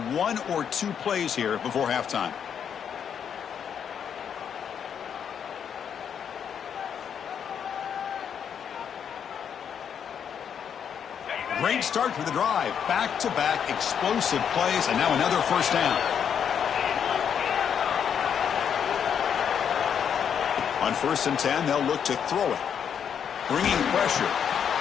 1 or 2 plays here before halftime. Great start to the drive. Back-to-back explosive plays, and now another first down. On 1st and 10, they'll look to throw it. Bringing pressure.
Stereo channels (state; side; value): quieter; right; 8.0 dB